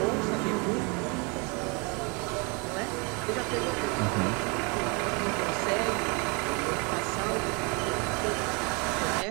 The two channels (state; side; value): quieter; left; 31.2 dB